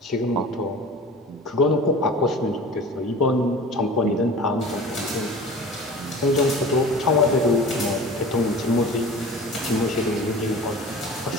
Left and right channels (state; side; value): normal; both; correlation 0.39